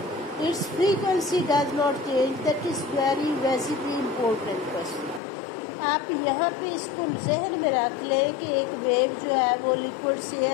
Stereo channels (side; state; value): right; drops out; at 5.2 s